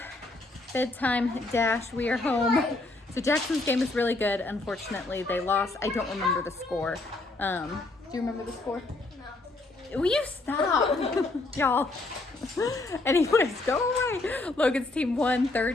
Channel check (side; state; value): right; quieter; 3.0 dB